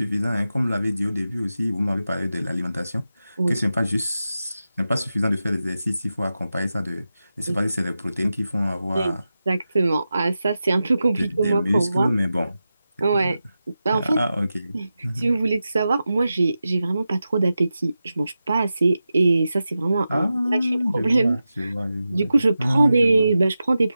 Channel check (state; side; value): inverted; both; correlation -0.92